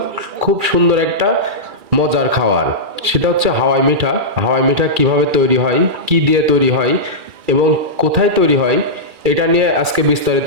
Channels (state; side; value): late; left; 2.3 ms